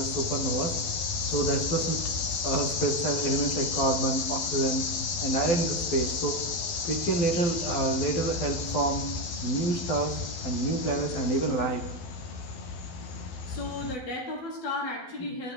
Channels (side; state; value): right; late; 12 ms